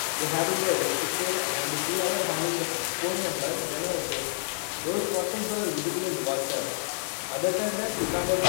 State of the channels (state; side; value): silent; right; digital silence